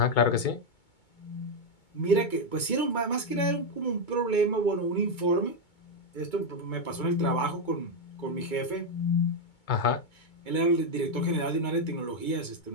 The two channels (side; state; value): right; late; 2.2 ms